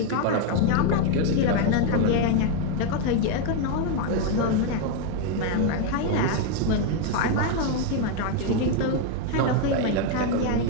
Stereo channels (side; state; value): both; different; correlation 0.01